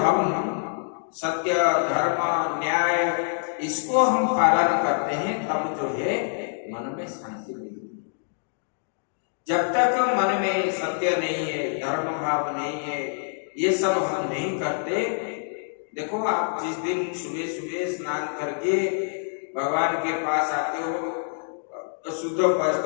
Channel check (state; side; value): silent; right; digital silence